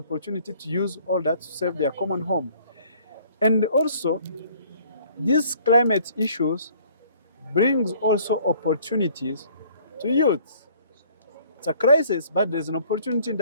to use all that to save their common home. And also, these climate issues brings also opportunities to youth. It's a crisis, but there's an opportunity in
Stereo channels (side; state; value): both; inverted; correlation -0.57